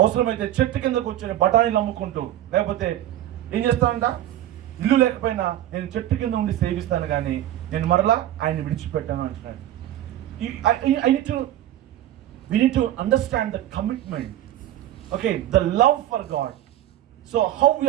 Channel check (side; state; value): left; quieter; 13.0 dB